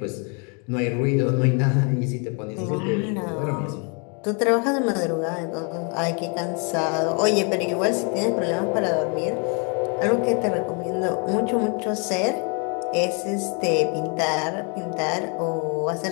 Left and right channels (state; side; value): quieter; right; 35.8 dB